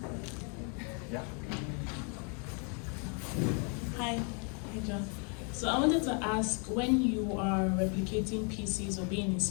Yeah. Hi, John. So I wanted to ask, when you are replicating pieces or being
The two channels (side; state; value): right; quieter; 38.4 dB